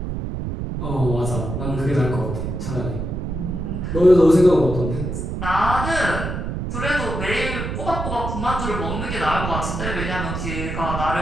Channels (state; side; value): noise; right; rumble, 4 dB below the sound